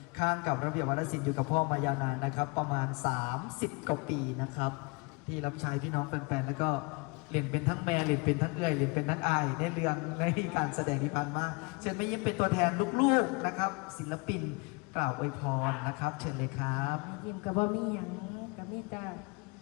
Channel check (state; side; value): quieter; right; 28.6 dB